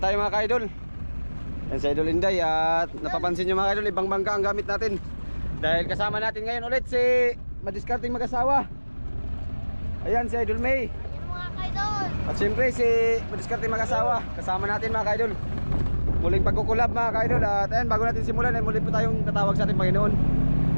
tayo mga ka-idol. Ayan si Idol Inday at napapansin nyo mga ka-idol, ibang bangka ang gamit natin. Dahil kasama natin ngayon ulit si madiskarting mag-asawa. Ayan si Idol May. Ayan mga ka-idol. At siyempre si madiskarting mag-asawa. Kasama natin mga ka-idol. Muling pagkukulab mga ka-idol. At ayan, bago natin simulan ay muli po tayong tatawag sa ating Panginoon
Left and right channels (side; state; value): both; inverted; correlation -1.00